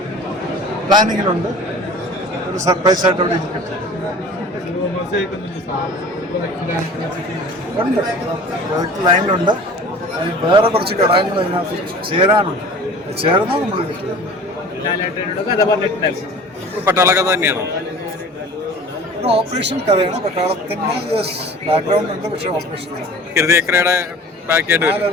പ്ലാനിങ്ങിലുണ്ട്. ഒരു സർപ്രൈസ് ആയിട്ട് അവിടെ ഇരിക്കട്ടെ. ഉണ്ട്, ലൈനിലുണ്ട്. വേറെ കുറച്ച് ഘടകങ്ങൾ അതിനകത്ത് ചേരാനുണ്ട്. ചേർന്നാൽ നമ്മൾ കിട്ടുക. പട്ടാള കഥ തന്നെയാണോ? ഒരു ഓപ്പറേഷൻ കഥയാണ്. പട്ടാളത്തിൻ്റെ ബാക്ക്ഗ്രൗണ്ട് ഉണ്ട്, പക്ഷേ ഓപ്പറേഷൻ ഹൃദയക്രയുടെ ബാക്കിയായിട്ട് ആ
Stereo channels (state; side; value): normal; both; correlation 0.42